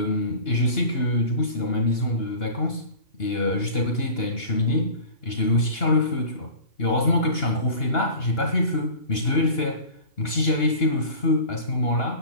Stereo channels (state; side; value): late; right; 2.9 ms